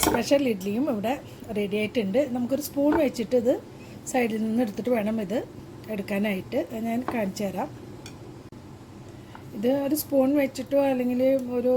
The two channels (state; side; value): identical; both; correlation 1.00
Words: സ്പെഷ്യൽ ഇഡ്ഡലിയും ഇവിടെ റെഡി ആയിട്ടുണ്ട്. നമുക്കൊരു സ്പൂൺ വെച്ചിട്ട് ഇത് സൈഡിൽ നിന്ന് എടുത്തിട്ട് വേണം ഇത് എടുക്കാനായിട്ട്. ഞാൻ കാണിച്ചു തരാം. ഇത് ഒരു സ്പൂൺ വെച്ചിട്ടോ അല്ലെങ്കിൽ ഒരു